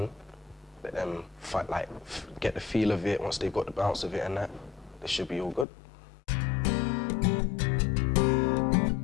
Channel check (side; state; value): right; drops out; at 5.7 s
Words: let them get the feel of it. Once they've got the bounce of it and that, they should be all good.